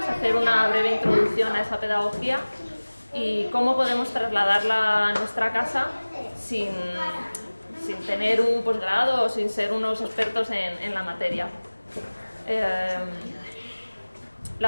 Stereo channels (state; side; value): inverted; both; correlation -1.00